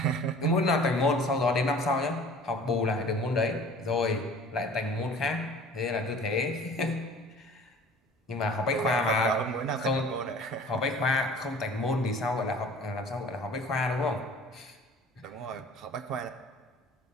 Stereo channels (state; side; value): normal; both; correlation 0.46